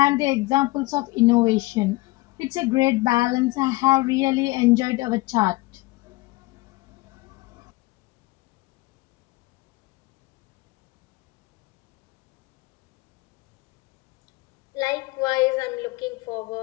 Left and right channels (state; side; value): quieter; right; 21.2 dB